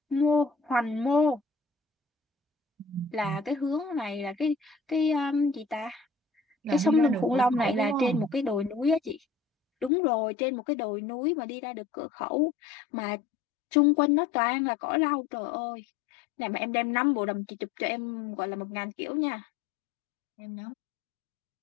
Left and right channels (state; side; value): drops out; right; at 9.9 s